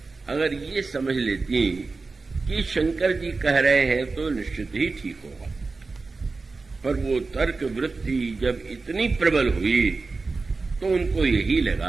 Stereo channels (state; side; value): quieter; left; 3.9 dB